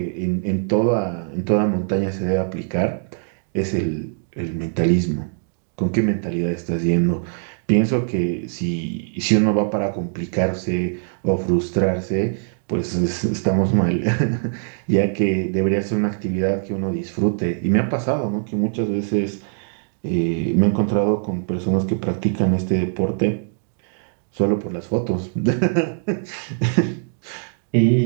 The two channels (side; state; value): left; silent; digital silence